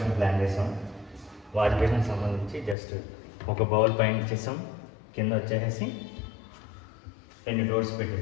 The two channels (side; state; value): right; drops out; at 2.8 s